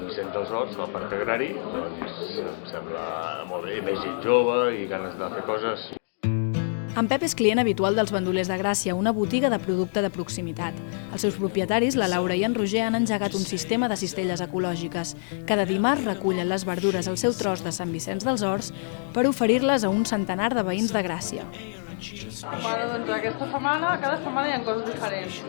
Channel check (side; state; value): right; silent; digital silence